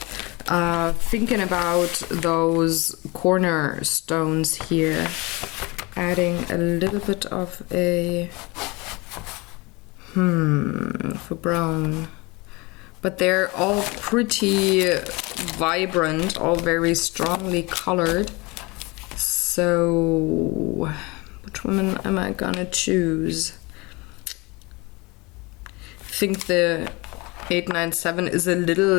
Thinking about those cornerstones here, adding a little bit of a for brown, but they're all pretty vibrant, all very strongly colored. So which one am I gonna choose? I think the 897 is a little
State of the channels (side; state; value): right; quieter; 25.3 dB